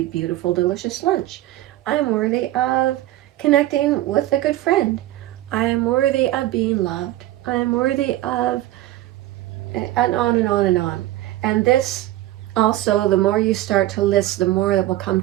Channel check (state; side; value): quieter; left; 15.3 dB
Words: beautiful, delicious lunch. I am worthy of connecting with a good friend. I am worthy of being loved. I am worthy of, and on and on and on. And this also, the more you start to list, the more that will come